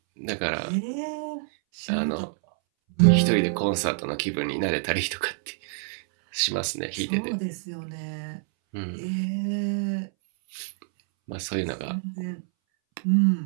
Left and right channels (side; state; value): left; silent; 60 dB below the other